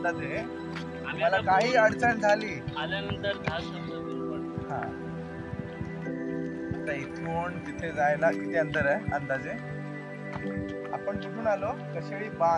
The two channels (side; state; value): both; identical; correlation 1.00